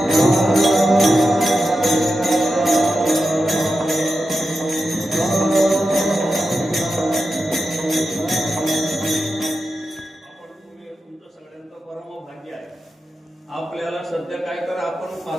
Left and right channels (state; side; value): normal; both; correlation 0.90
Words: तुमचं सगळ्यांचं परम भाग्य आहे. आपल्याला सध्या काय तर आपण